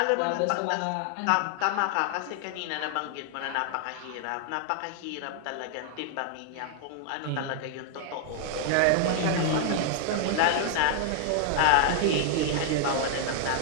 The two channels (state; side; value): different; both; correlation 0.00